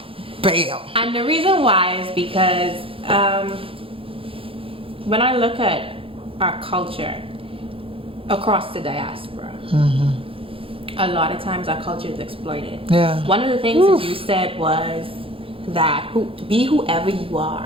Bam. And the reason why is because when I look at our culture across the diaspora, a lot of times our culture is exploited. Yeah. One of the things that you said was that be whoever you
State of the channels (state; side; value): late; left; 0.27 ms